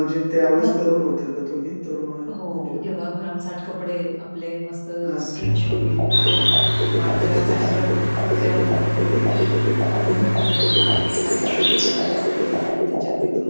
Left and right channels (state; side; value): inverted; both; correlation -1.00